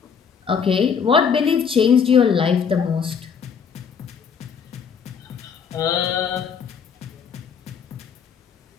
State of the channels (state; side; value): quieter; right; 6.6 dB